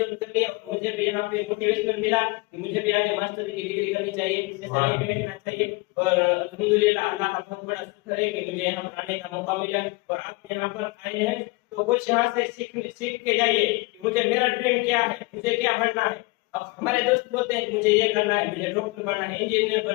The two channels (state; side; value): quieter; right; 24.9 dB